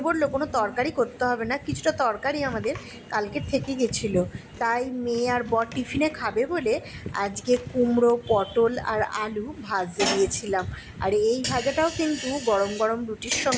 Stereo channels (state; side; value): identical; both; correlation 1.00